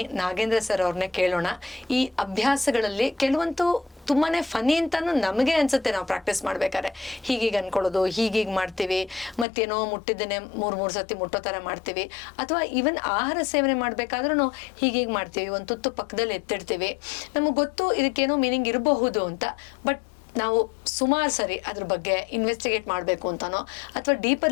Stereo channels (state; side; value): drops out; right; at 9.5 s